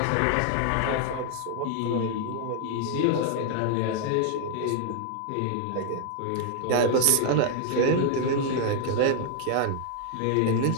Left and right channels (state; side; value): different; both; correlation 0.00